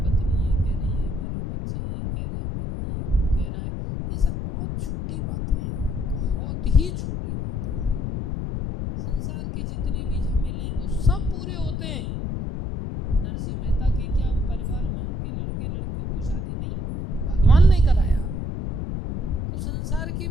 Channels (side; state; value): left; noise; rumble, 3 dB below the sound